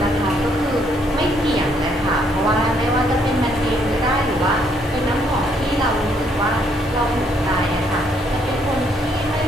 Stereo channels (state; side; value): normal; both; correlation 0.70